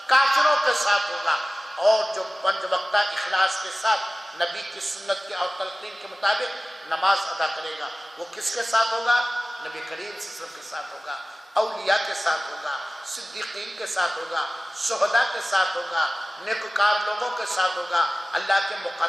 کافروں کے ساتھ ہوگا۔ اور جو 5 وقتہ اخلاص کے ساتھ نبی کی سنت کی اور تلقین کے مطابق نماز ادا کرے گا، وہ کس کے ساتھ ہوگا؟ نبی کریم صلی اللہ علیہ وسلم کے ساتھ ہوگا، اولیاء کے ساتھ ہوگا، صدیقین کے ساتھ ہوگا، شہداء کے ساتھ ہوگا، نیکوکار لوگوں کے ساتھ ہوگا، اللہ کے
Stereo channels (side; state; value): both; normal; correlation 0.96